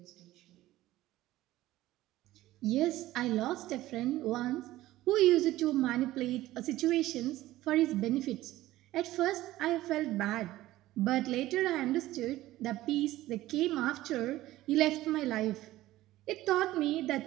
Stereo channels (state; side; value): quieter; left; 16.0 dB